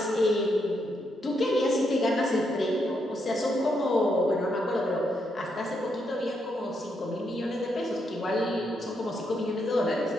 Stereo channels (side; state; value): both; normal; correlation 0.79